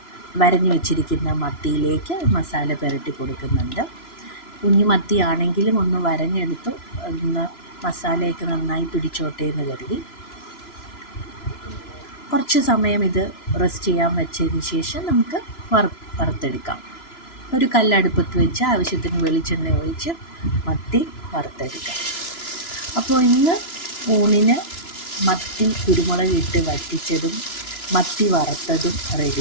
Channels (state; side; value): late; right; 3.0 ms